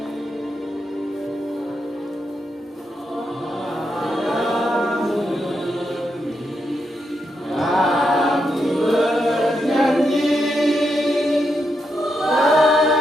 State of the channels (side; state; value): both; normal; correlation 0.83